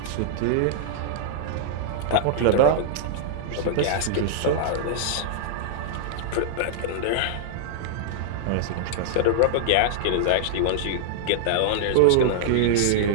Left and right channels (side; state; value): both; different; correlation -0.01